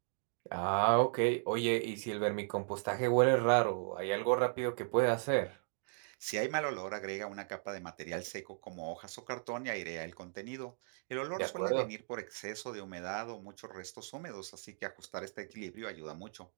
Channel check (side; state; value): left; silent; digital silence